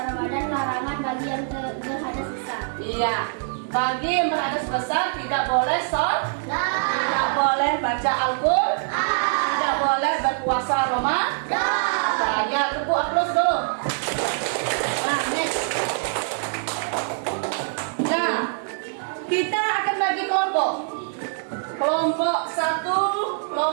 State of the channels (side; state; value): left; silent; digital silence